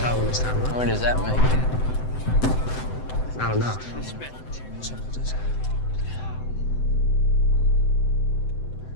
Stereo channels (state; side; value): late; right; 7.9 ms